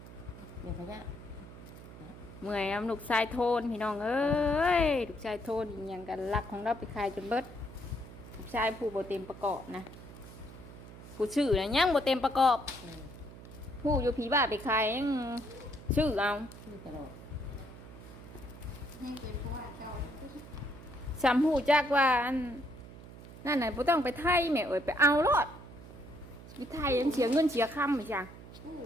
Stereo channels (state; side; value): noise; right; hum, 16 dB below the sound